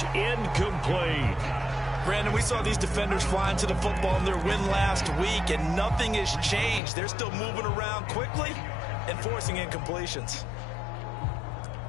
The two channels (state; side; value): drops out; right; at 6.8 s